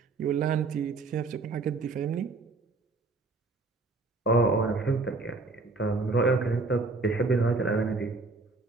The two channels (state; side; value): quieter; left; 3.7 dB